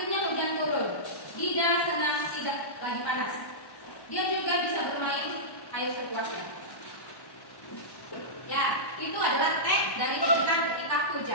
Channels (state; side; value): late; right; 1.1 ms